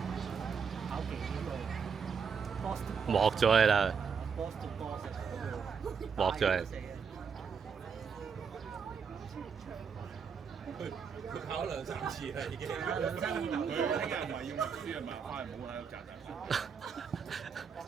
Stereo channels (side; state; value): left; quieter; 6.3 dB